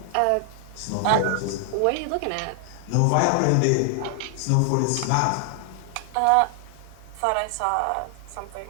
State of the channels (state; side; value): different; both; correlation 0.00